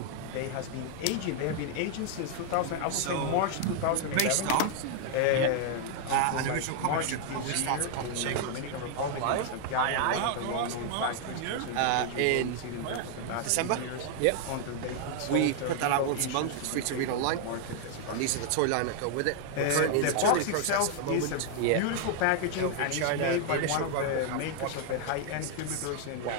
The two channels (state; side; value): different; both; correlation 0.00